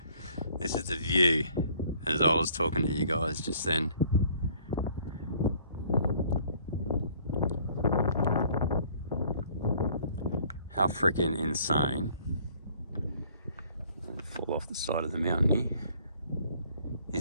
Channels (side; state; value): both; inverted; correlation -0.58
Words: this is the view as I was talking to you guys just then. How freaking insane. Fall off the side of the mountain here.